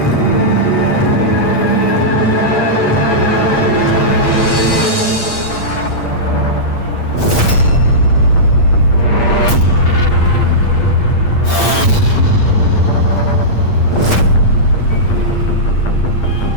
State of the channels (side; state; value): right; late; 8.5 ms